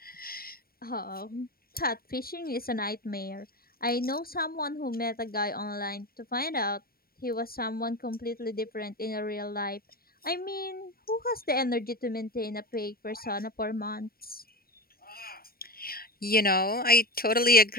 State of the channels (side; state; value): right; late; 0.43 ms